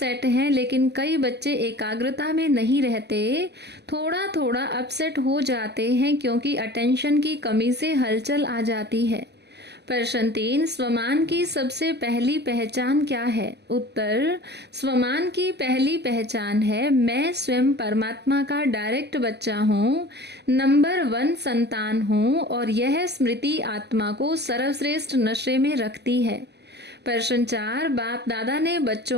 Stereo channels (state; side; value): late; left; 0.49 ms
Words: हैं, लेकिन कई बच्चे एकाग्रता में नहीं रहते, थोड़ा थोड़ा अपसेट हो जाते हैं क्योंकि अटेंशन की कमी से हलचल आ जाती है। प्रश्न 3, स्वमान की सबसे पहली पहचान क्या है? उत्तर, स्वमान की पहली पहचान है मैं स्वयं परमात्मा का डायरेक्ट बच्चा हूँ, नंबर 1 संतान हूँ और यह स्मृति आत्मा को सर्वश्रेष्ठ नशे में रखती है। प्रश्न 4, बाप दादा ने